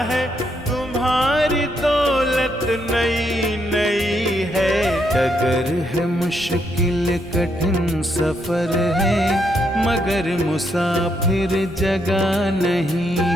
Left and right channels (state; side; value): noise; right; rumble, 20 dB below the sound